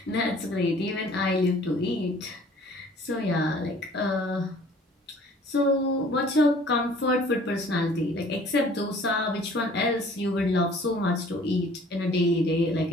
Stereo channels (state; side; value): normal; both; correlation 0.53